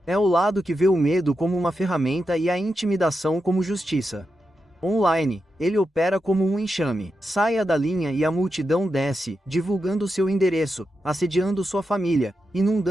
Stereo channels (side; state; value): both; normal; correlation 0.88